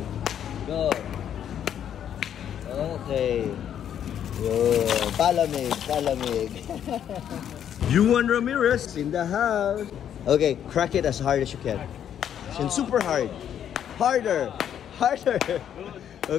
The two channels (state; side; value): quieter; right; 9.5 dB